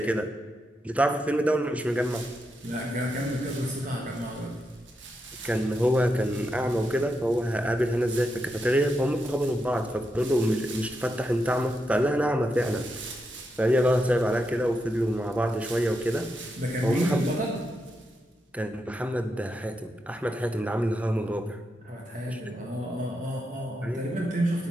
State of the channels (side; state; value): both; normal; correlation 0.84